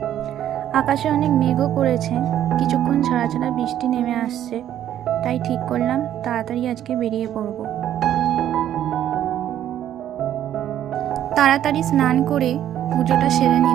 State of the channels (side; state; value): left; quieter; 11.2 dB